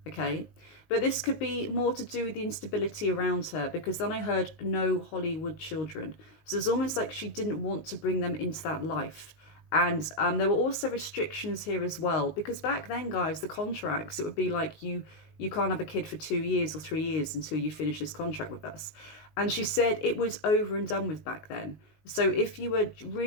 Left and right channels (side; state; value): right; late; 19 ms